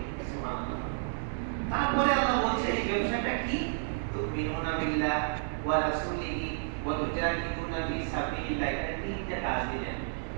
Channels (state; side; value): silent; left; digital silence